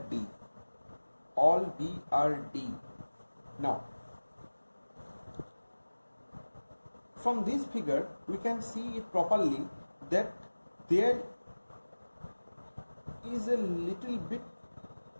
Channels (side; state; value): both; inverted; correlation -1.00